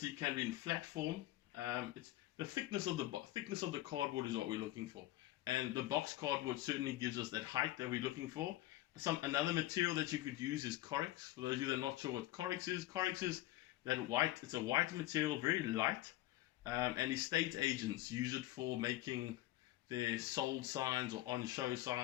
can be in flat form. It's the thickness of the cardboard is what we're looking for, and the box cardboard certainly gives us that height that we're looking for. Another material that you could use is Corex. For those of you that are not sure what Corex is that white. It's a white material, very light, and estate agents use it for making their sold signs or on-show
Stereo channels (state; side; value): quieter; right; 16.3 dB